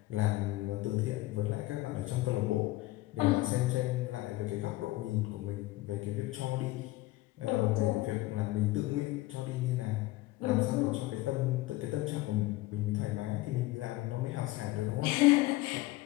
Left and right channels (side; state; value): right; quieter; 18.6 dB